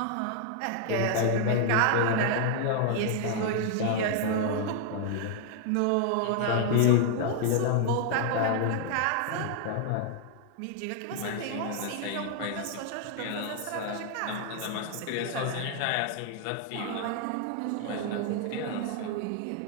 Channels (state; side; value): different; both; correlation 0.00